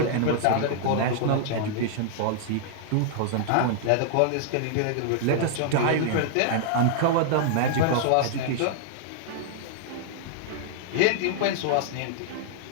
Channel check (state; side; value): different; both; correlation -0.01